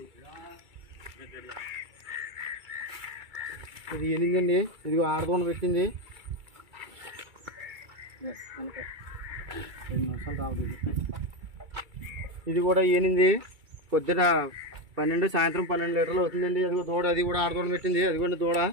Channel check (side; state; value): left; late; 2.3 ms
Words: ఇది ఎనిమిదండి, ఇదిగో ఆడదోన పెట్టింది. 2 నిమిషాలు రావద్దు. ఇది కూడా ఏనింది, పొద్దున 12 సాయంత్రం 12 లీటర్లు అవుతుందండి. అదిగో దూడ, అది కూడా ఆడదోడ పెట్టింది. అదిగోండి దూడ,